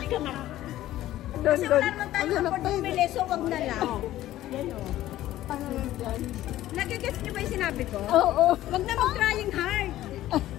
ka na. Kasi wala naman tayo kapag bumili, so wag na lang. Yan o. Ano yun dyan? Nagigets niyo ba yung sinabi ko? Oo. Wag na mag-trying hard.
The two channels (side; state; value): right; quieter; 14.3 dB